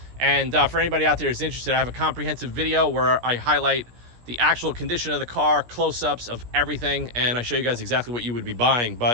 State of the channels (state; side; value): late; left; 17 ms